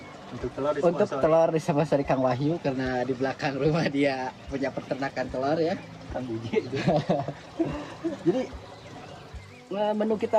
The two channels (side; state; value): both; identical; correlation 1.00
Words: Untuk telur Untuk telur disponsori Kang Wahyu karena di belakang rumah dia punya peternakan telur ya. Kang Biji. Jadi menu